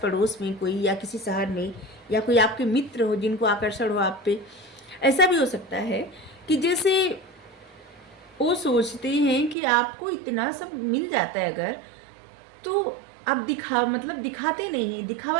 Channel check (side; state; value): left; drops out; at 9.6 s